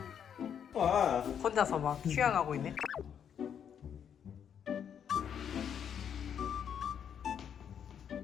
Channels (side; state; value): right; quieter; 8.3 dB